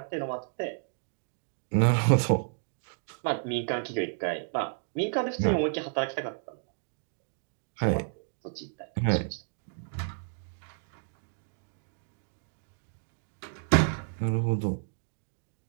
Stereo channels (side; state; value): left; silent; 57 dB below the other